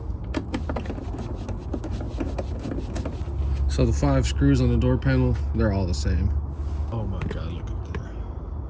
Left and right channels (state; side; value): identical; both; correlation 1.00